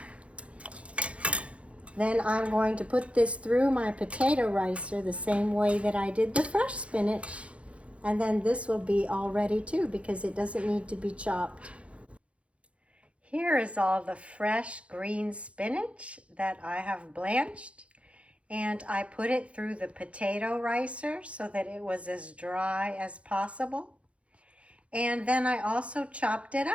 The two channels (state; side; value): late; left; 0.062 ms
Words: Then I'm going to put this through my potato ricer the same way that I did the fresh spinach. And then this will be all ready too, because it doesn't need to be chopped. Here is all the fresh green spinach that I have blanched. And I put it through the potato ricer so that it was as dry as possible. And then I also chopped it